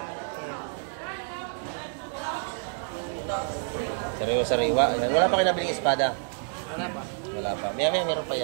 Sariwa-sariwa. Ayan, wala pa kayo nabiling espada? Wala pa. Maya-maya, meron pa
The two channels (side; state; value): left; silent; 59 dB below the other